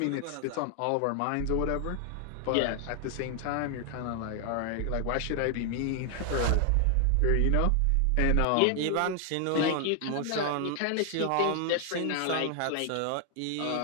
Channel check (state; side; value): different; both; correlation 0.00